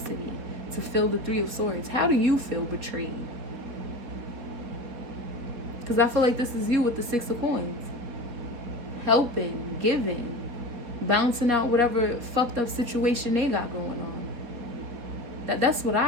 to feel the 3 of Swords. How do you feel betrayed? Because I feel like this is you with the 6 of Coins. Helping, giving, bouncing out whatever fucked up situation they got going on. That's what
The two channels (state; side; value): late; left; 4.2 ms